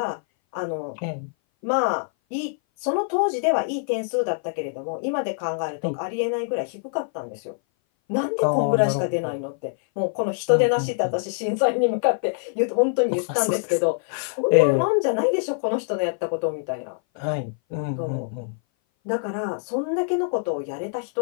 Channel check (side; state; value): right; silent; 58 dB below the other